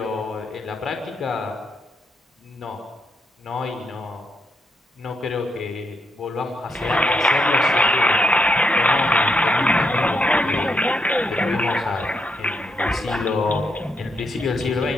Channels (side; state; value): both; normal; correlation 0.79